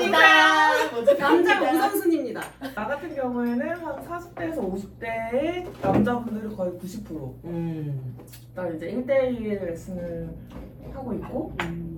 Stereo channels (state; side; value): identical; both; correlation 1.00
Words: 남자 우선순위입니다. 나 같은 경우에는 한 40대에서 50대의 남자분들이 거의 90%. 나 이제 1대1 레슨을 하고 있고,